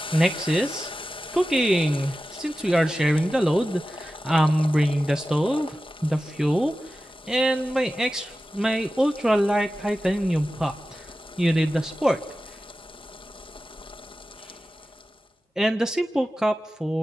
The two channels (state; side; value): normal; both; correlation 0.94